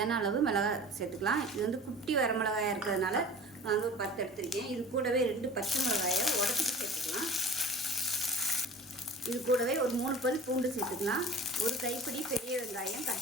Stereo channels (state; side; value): normal; both; correlation 0.40